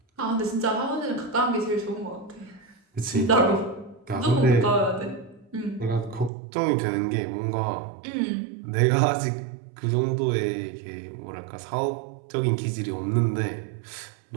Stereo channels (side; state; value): left; drops out; at 6.3 s